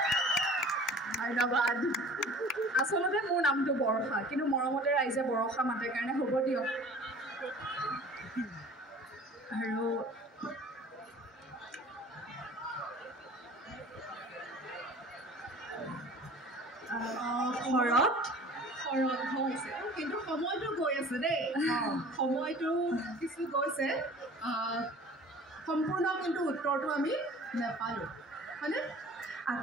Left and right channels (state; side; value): normal; both; correlation 0.45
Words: ধন্যবাদ আচলতে মোৰ নামটো বৰষা কিন্তু মৰমতে ৰাইজে বৰষা মাতে কাৰণে হ'ব দিয়ক আৰু শৰৎ হৈছে কিন্তু সময়টো গৈ আছে দেই সময়টো কিছু গৈছে সম্পূৰ্ণ কিন্তু উত্তৰটো আমি নাপালোঁ হয়নে